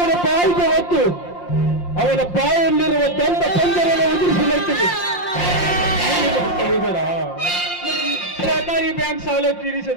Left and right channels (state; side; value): late; right; 5.7 ms